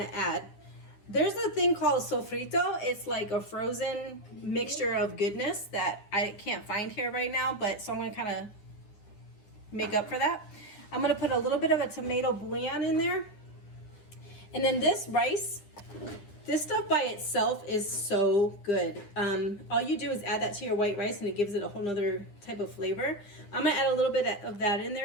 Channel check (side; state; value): right; late; 9.9 ms